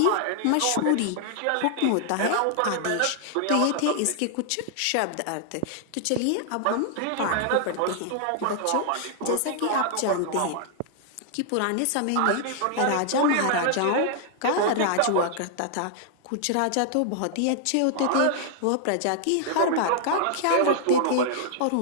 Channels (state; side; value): different; both; correlation -0.01